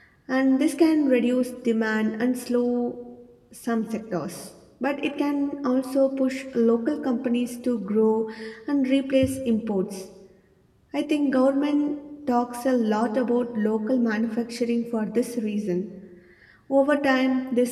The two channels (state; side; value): identical; both; correlation 1.00